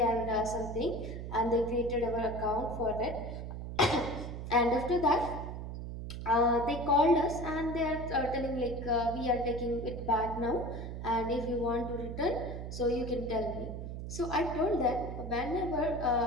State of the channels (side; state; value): right; noise; hum, 7 dB below the sound